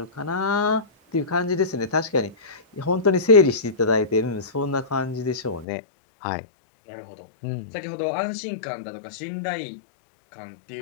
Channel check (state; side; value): drops out; right; at 5.7 s